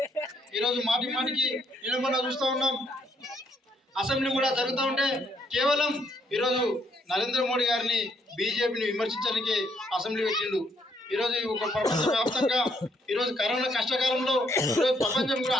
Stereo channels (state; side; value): normal; both; correlation 0.71